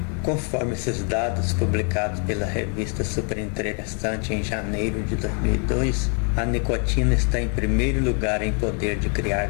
Conforme esses dados publicados pela revista Super Interessante em janeiro de 2002, a nicotina está em primeiro lugar em poder de criar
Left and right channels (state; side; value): quieter; right; 39.4 dB